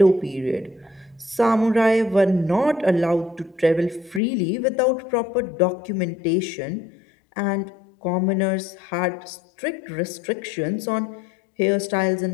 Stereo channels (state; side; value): drops out; right; at 4.2 s